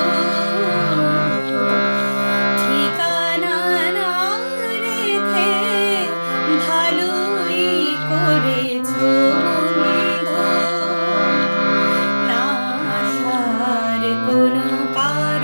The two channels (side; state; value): both; inverted; correlation -1.00